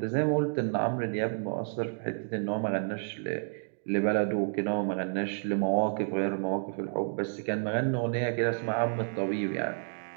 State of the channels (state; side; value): silent; left; digital silence